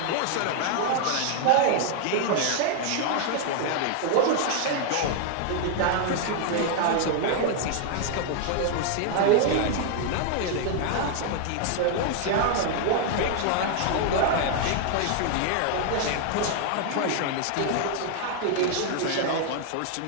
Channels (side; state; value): both; different; correlation 0.00